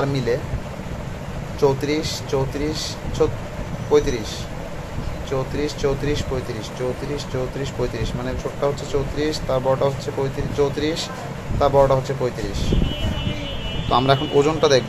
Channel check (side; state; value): both; identical; correlation 1.00